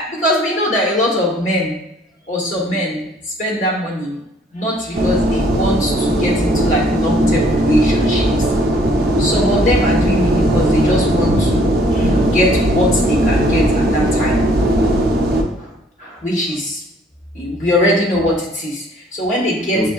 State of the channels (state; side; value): normal; both; correlation 0.61